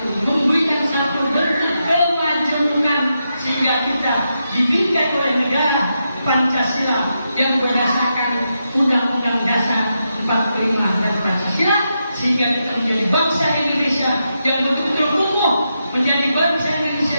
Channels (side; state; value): both; inverted; correlation -0.85